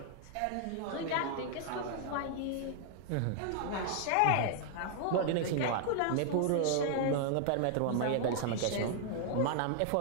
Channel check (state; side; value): different; both; correlation -0.01